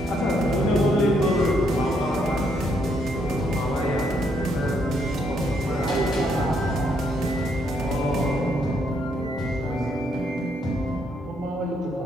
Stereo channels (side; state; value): both; normal; correlation 0.73